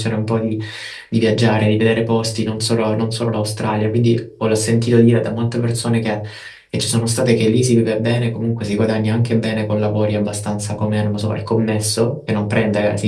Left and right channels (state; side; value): identical; both; correlation 1.00